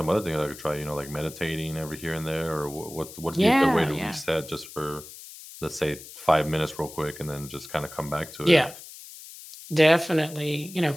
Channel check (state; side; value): noise; left; hiss, 15 dB below the sound